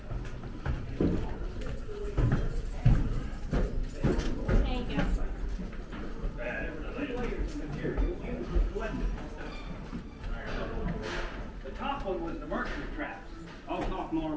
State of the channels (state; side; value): identical; both; correlation 1.00